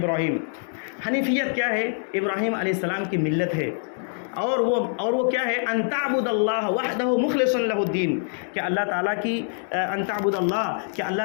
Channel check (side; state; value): right; silent; 62 dB below the other